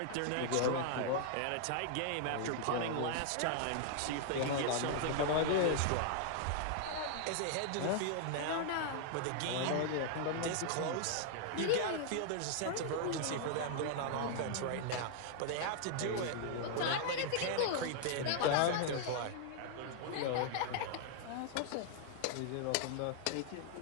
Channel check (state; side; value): different; both; correlation 0.00